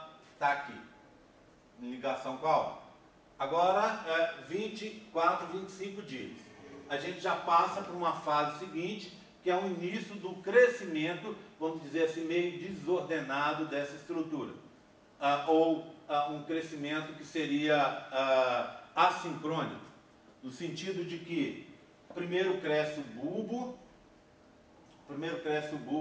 aqui, em ligação com a aorta. Agora, 24, 25 dias. A gente já passa para uma fase seguinte, que é o início do crescimento, vamos dizer assim, meio desordenado dessa estrutura. Ou um crescimento que seria assincrônico, no sentido de que primeiro cresce o bulbo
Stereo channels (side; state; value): both; identical; correlation 1.00